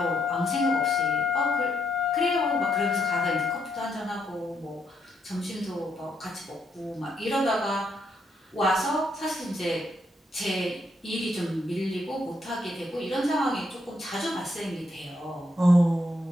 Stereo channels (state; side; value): normal; both; correlation 0.76